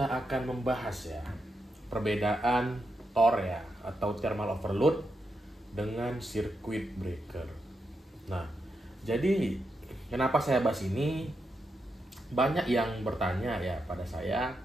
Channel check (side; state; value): both; normal; correlation 0.85